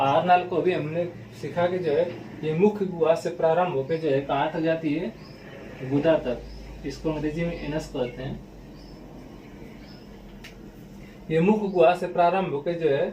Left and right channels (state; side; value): identical; both; correlation 1.00